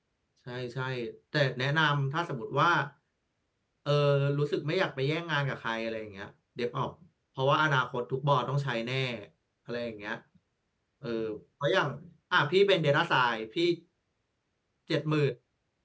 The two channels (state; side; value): identical; both; correlation 1.00